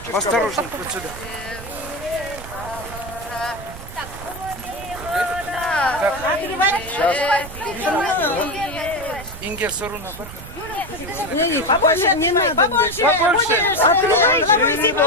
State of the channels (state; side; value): noise; right; rumble, 13 dB below the sound